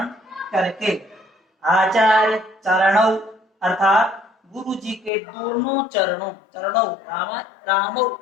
करके, आचार्य चरणों अर्थात गुरु जी के दोनों चरणों, चरणों रामो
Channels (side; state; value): right; drops out; at 5.1 s